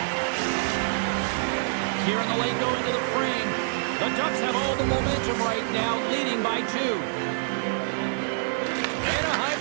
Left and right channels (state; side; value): silent; left; 61 dB below the other